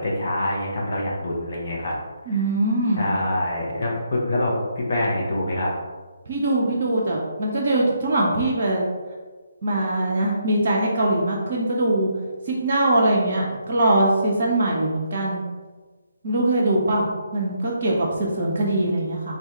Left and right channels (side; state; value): both; inverted; correlation -0.73